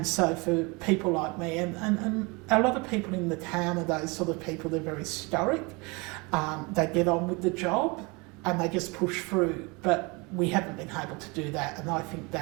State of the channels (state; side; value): quieter; left; 27.7 dB